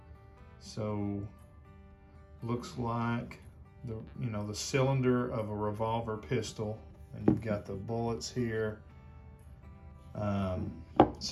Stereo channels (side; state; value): both; identical; correlation 1.00